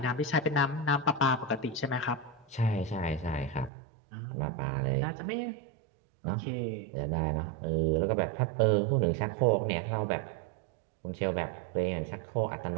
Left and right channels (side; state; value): left; drops out; at 3.7 s